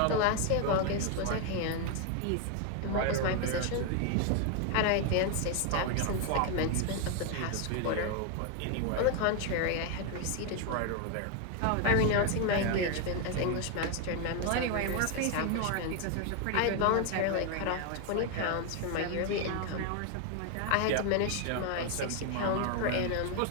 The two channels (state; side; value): different; both; correlation 0.01